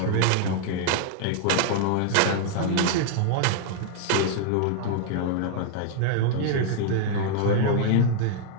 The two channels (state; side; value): different; both; correlation 0.00